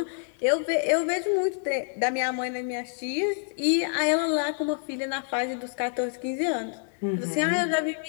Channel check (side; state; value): right; silent; 60 dB below the other